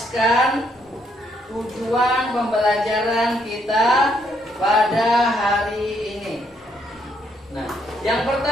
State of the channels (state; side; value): normal; both; correlation 0.72